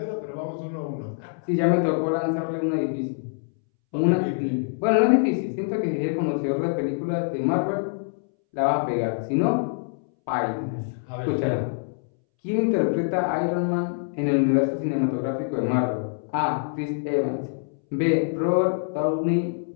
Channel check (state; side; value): silent; right; 62 dB below the other